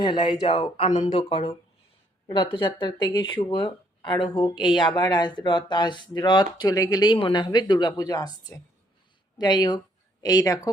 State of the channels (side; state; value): both; normal; correlation 0.68